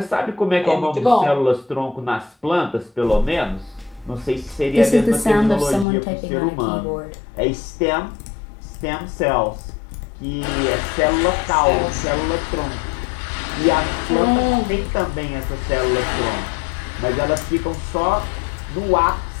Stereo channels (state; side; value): drops out; right; at 5.9 s